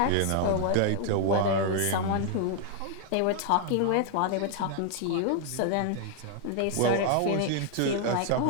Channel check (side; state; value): both; different; correlation 0.00